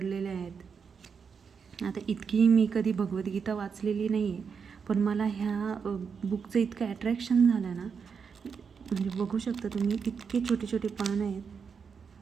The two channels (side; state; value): left; quieter; 6.1 dB